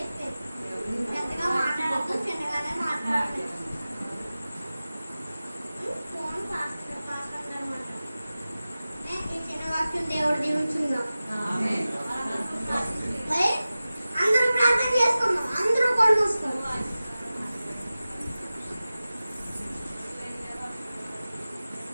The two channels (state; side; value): inverted; both; correlation -0.96